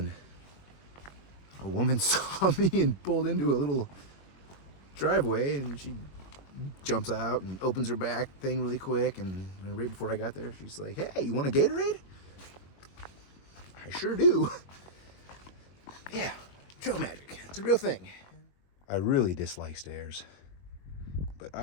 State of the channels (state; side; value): late; right; 21 ms